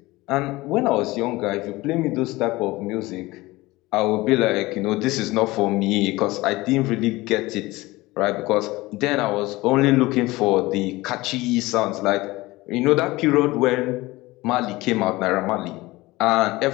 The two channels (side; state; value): right; quieter; 20.1 dB